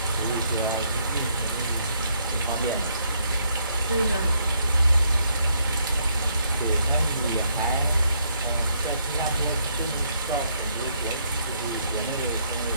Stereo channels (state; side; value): inverted; both; correlation -0.72